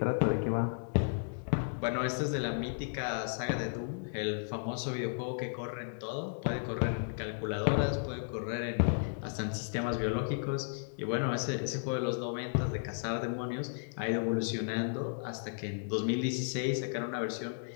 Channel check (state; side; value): silent; right; digital silence